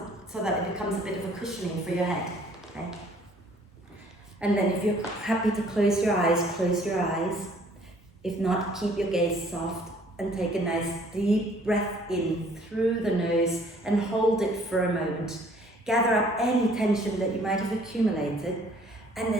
that it becomes a bit of a cushioning for your head. Okay. And then if you're happy to close your eyes, close your eyes. If not, keep your gaze soft and take a nice deep breath in through the nose and hold it for a moment. Gather up any tension that you might have accumulated and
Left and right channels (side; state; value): both; normal; correlation 0.58